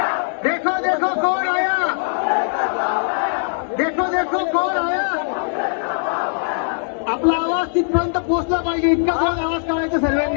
देखो देखो कौन आया, देखो देखो कौन आया। आपला आवाज तिथपर्यंत पोहोचला पाहिजे, इतका जोरात आवाज काढायचा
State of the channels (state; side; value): silent; right; digital silence